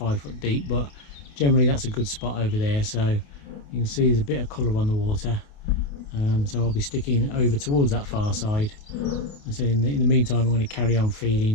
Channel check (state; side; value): late; right; 28 ms